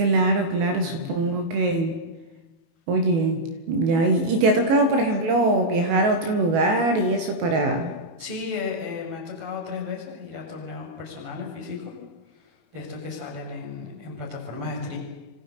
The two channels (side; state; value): left; late; 18 ms